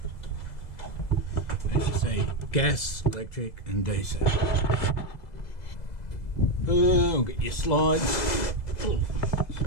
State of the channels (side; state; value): right; late; 2.0 ms